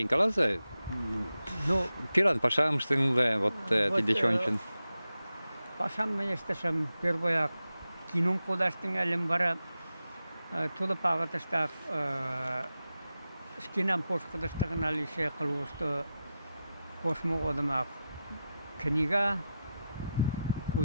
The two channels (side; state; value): both; inverted; correlation -0.90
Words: каласа, Ну, пиран пашам штыңлы, вот тидечончен. пашам менештешем первояк кином кудаштың әлем бара тулып ағытыштақ шкинам пошқыдыштығын алише қылуышты кошму одымақ книга